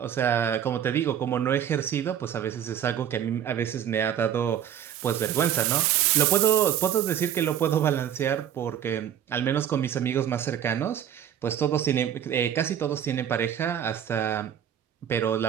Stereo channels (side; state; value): left; quieter; 9.9 dB